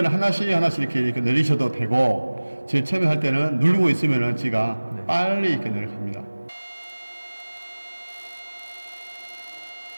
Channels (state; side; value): inverted; both; correlation -1.00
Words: 하나씩 이렇게 내리셔도 되고, 제일 처음에 할 때는 누르고 있으면은 지가 빨리 이렇게 내려갑니다.